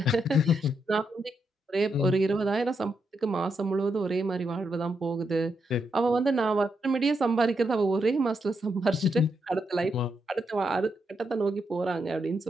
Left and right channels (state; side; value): normal; both; correlation 0.81